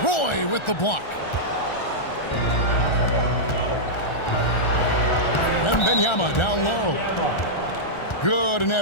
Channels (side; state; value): right; late; 1.4 ms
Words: Roy with the block. Wembanyama down low. Good, and